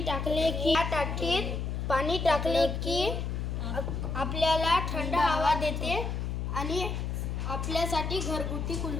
टाकले की या टाकीत पाणी टाकले की आपल्याला थंड हवा देते आणि आपल्यासाठी घरगुती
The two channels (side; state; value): left; noise; hum, 2 dB below the sound